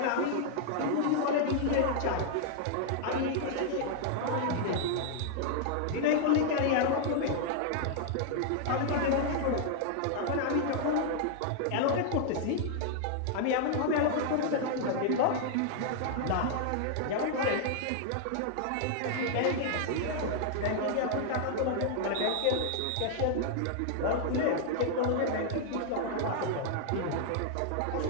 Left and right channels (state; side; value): different; both; correlation -0.01